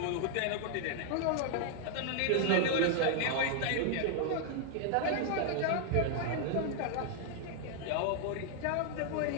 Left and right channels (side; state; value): both; different; correlation 0.00